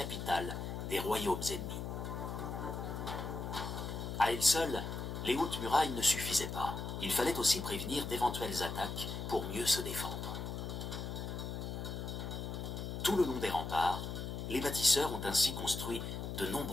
des royaumes ennemis. À elles seules, les hautes murailles ne suffisaient pas. Il fallait aussi prévenir d'éventuelles attaques pour mieux se défendre. Tout le long des remparts, les bâtisseurs ont ainsi construit de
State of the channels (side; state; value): left; noise; hum, 5 dB below the sound